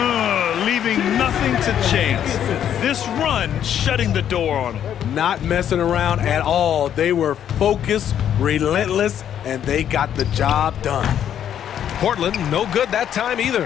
Leaving nothing to chance. This run shutting the door on him. Not messing around at all. They were focused, relentless, and they got the job done. Portland, no good that time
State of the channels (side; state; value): right; quieter; 9.8 dB